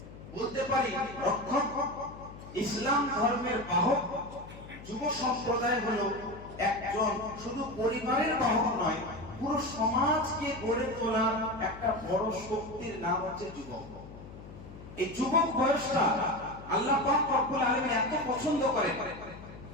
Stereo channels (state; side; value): noise; left; hum, 15 dB below the sound